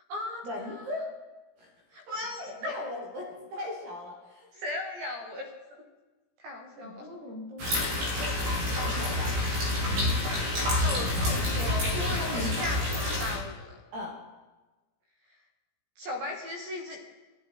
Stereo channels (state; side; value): late; left; 17 ms